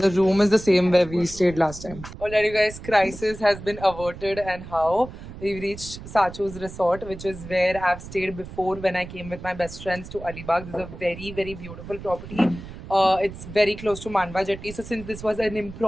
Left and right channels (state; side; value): noise; right; rumble, 13 dB below the sound